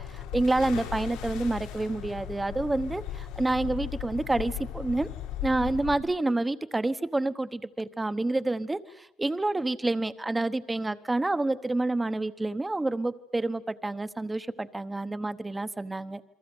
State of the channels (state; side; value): normal; both; correlation 0.95